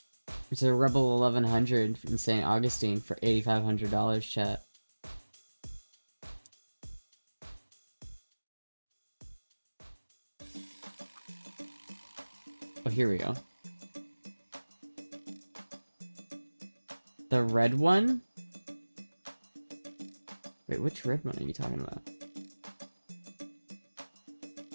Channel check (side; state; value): both; inverted; correlation -1.00